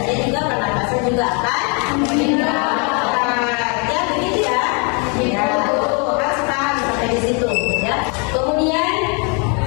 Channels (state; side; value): quieter; right; 34.9 dB